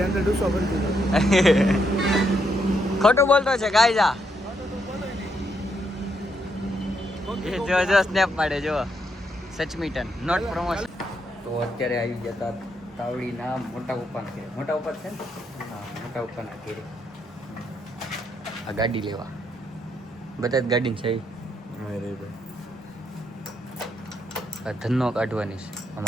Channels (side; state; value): both; normal; correlation 0.77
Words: અંદર ડૂસો ભરી દીધો. ખોટું બોલતો છે ગાયજા. જો સ્નેપ પાડે જો. સચમીટન નોટ પ્રમોશન. તો અત્યારે આવી જતા તાવડીના મોટા પપ્પાના ઘરે. મોટા પપ્પા છે ને? હા મોટા પપ્પાના ઘરે આ ગાડી લેવા. બધા જ ગાડી છે. ધનનો કાઢવાની છે